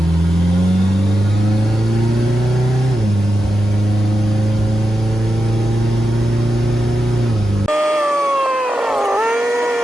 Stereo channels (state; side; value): normal; both; correlation 0.90